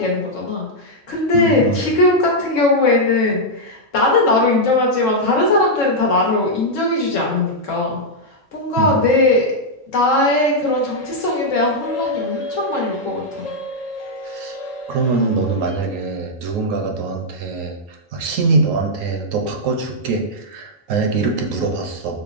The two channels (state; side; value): normal; both; correlation -0.04